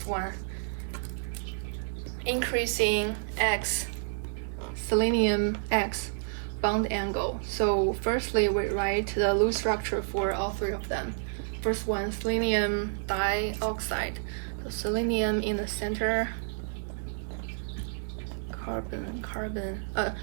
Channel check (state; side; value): silent; left; digital silence